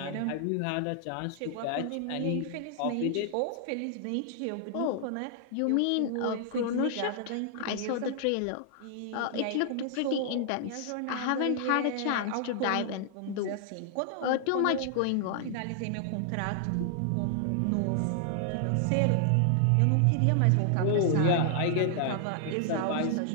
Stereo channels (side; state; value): both; different; correlation 0.00